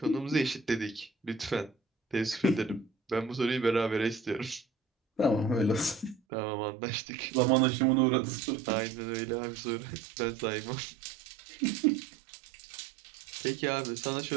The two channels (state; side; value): drops out; left; at 6.2 s